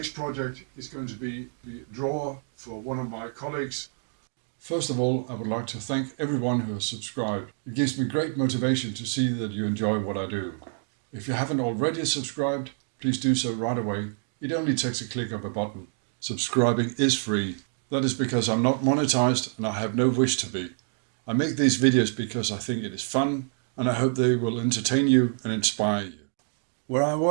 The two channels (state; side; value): silent; left; 60 dB below the other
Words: project is going to be the drawer for one of my colleagues. First of all, I would like to thank everyone who has subscribed. It gives me great motivation to see that you enjoy what I do. If you haven't already subscribed, please do so right away. It only takes a click of a button. Subscribing is free. That is because I'm not monetized and I have no wish to be. I make these videos because I think it is fun and I hope they will entertain you and inspire you. Where I